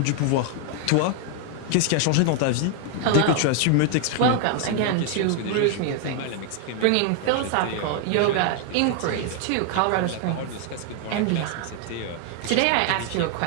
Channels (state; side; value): different; both; correlation 0.00